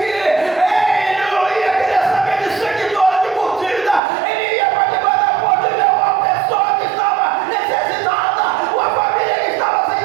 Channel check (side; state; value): left; drops out; at 4.0 s